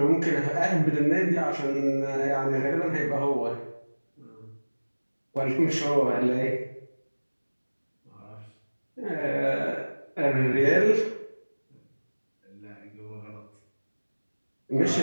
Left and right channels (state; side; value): inverted; both; correlation -1.00